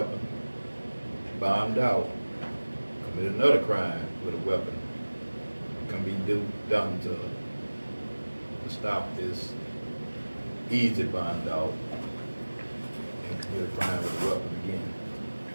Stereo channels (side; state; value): both; inverted; correlation -1.00